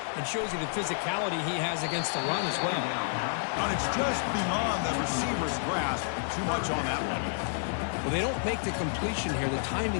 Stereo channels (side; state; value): right; silent; digital silence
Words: and shows you the physicality he has against the run as well. And it's just beyond the receiver's grasp. Too much on that one. Well, they don't make the completion here. The